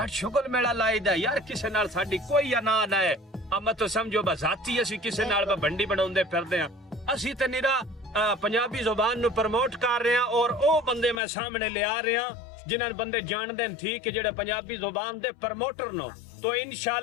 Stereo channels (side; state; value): right; drops out; at 11.2 s